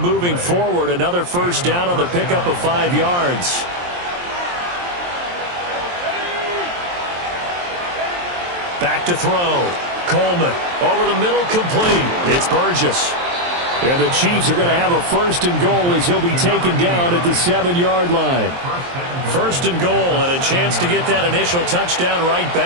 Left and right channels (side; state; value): left; late; 23 ms